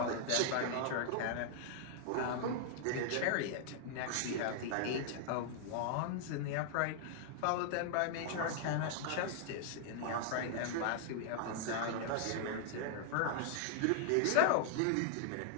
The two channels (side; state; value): both; different; correlation -0.01